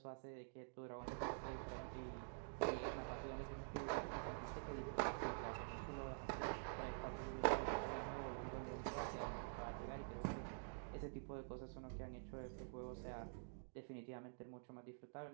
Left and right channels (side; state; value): left; silent; digital silence